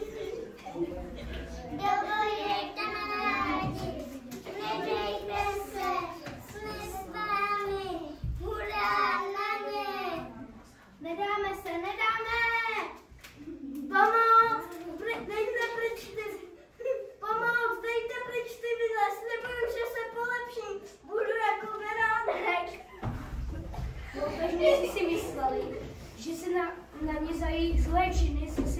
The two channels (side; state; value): both; identical; correlation 1.00